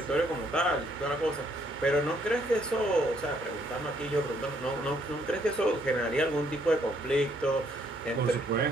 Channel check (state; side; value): normal; both; correlation 0.68